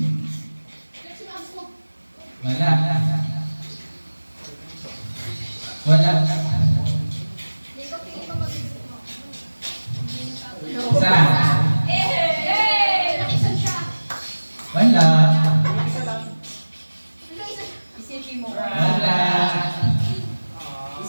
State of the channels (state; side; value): inverted; both; correlation -1.00